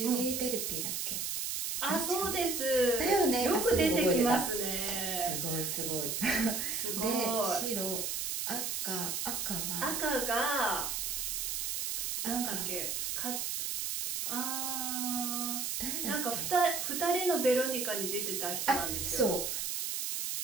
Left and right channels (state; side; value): noise; right; hiss, 1 dB below the sound